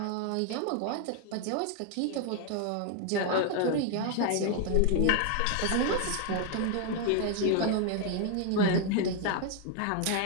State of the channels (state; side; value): different; both; correlation 0.00